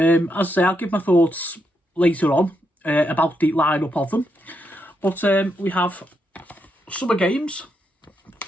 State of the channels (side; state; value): both; normal; correlation 0.81